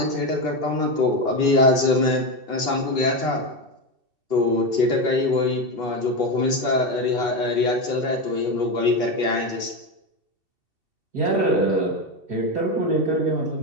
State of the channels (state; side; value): late; left; 2.7 ms